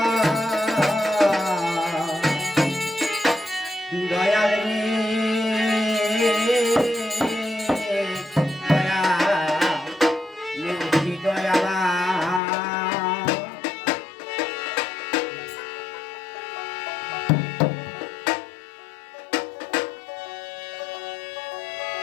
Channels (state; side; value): drops out; right; at 12.4 s